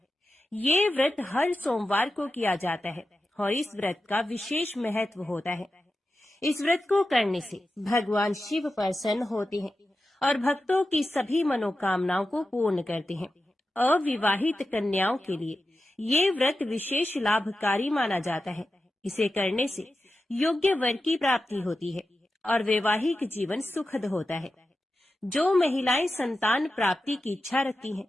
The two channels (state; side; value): normal; both; correlation 0.91